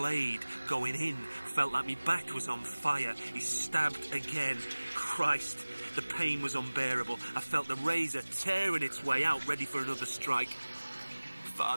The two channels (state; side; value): inverted; both; correlation -1.00